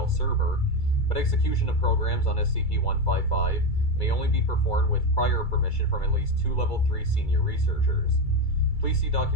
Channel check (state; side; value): late; right; 2.3 ms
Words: server, but execution of programs on SCP-155 may only be performed with prior permission from at least 2 Level 3 senior researchers. Please see